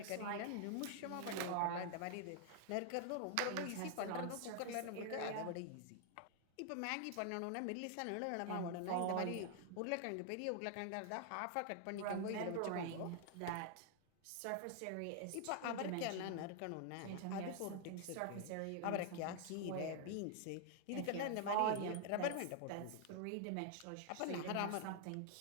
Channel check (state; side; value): different; both; correlation 0.00